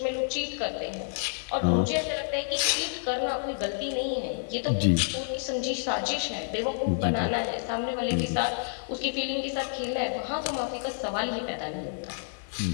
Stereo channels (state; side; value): silent; right; digital silence